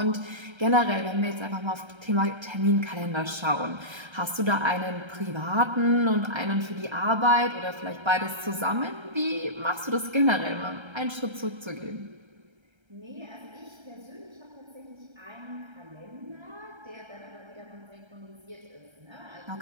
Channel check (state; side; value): late; left; 1.3 ms